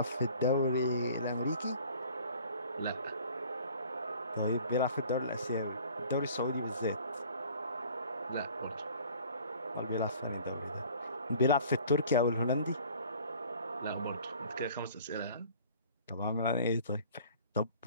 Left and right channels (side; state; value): both; inverted; correlation -0.50